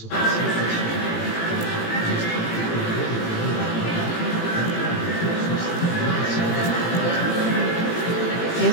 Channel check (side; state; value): right; late; 18 ms